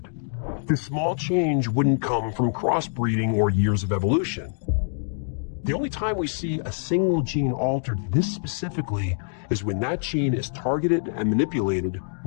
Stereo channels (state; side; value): silent; right; digital silence